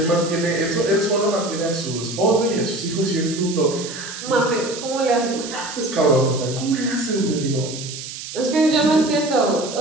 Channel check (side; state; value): right; noise; hiss, 10 dB below the sound